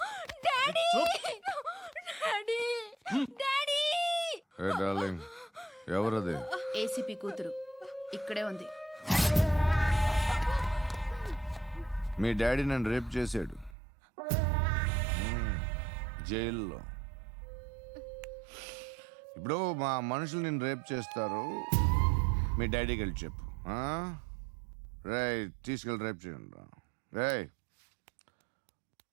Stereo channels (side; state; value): left; drops out; at 13.8 s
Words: డాడీ చూప్. Daddy daddy. ఏ డార్లింగ్, ఎవరది? ఏసీపీ కూతురు ఇక్కడే ఉంది. మీ డాడీ నన్ను రేప్ చేశాడు జైల్లో. ఇప్పుడు మా మనుషులు నేను రేప్ చేస్తారు, మీ డాడీకి వెళ్ళి చెప్పు. రేయ్, తీసుకెళ్ళి రేప్ చేయండి. రేయ్,